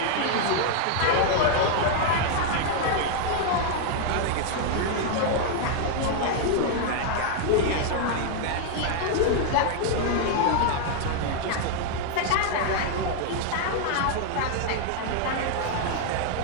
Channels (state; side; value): different; both; correlation 0.00